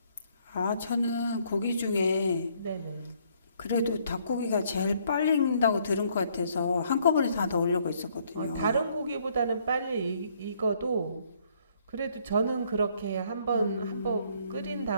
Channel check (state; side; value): inverted; both; correlation -0.66